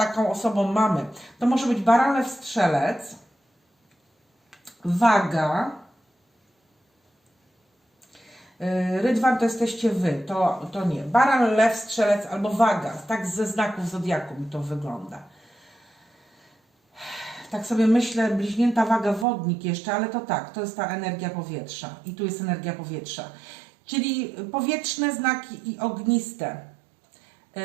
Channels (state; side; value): drops out; left; at 19.2 s